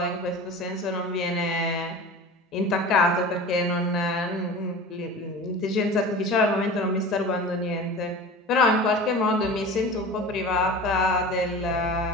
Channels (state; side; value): normal; both; correlation 0.35